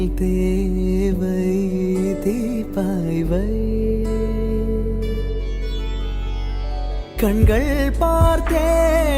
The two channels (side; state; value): both; identical; correlation 1.00